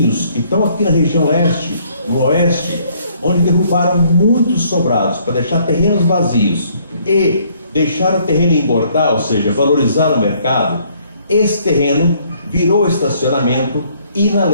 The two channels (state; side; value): inverted; both; correlation -0.64